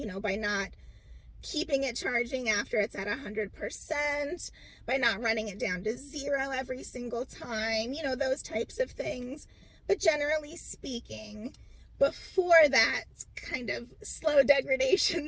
by not keeping it charging after it's at 100%, by not running it down to 0 every single time, those types of things. But generally speaking, before that kind of slow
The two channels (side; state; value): both; identical; correlation 1.00